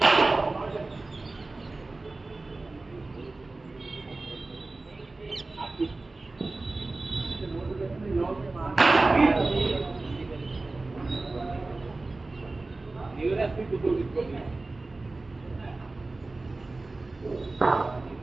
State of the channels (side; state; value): left; quieter; 3.3 dB